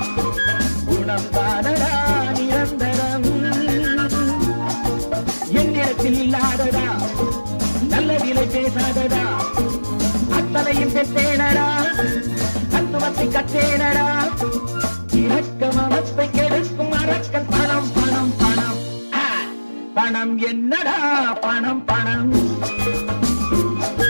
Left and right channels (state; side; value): inverted; both; correlation -1.00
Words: குணம் தானடா நிரந்தரம். என்னிடத்தில் இல்லாதடா நல்ல விலை பேசாதடா அத்தனையும் பெற்றேனடா தத்துவத்தை கற்றேனடா. இரக்கம் அவத்தை கெடுக்கும் அரக்கன் பணம் பணம் பணம். பணம் என்னடா பணம் பணம்